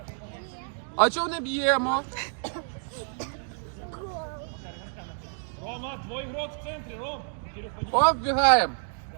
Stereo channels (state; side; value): silent; left; 59 dB below the other